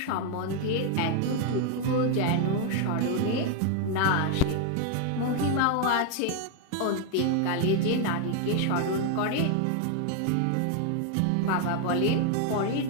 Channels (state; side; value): different; both; correlation 0.01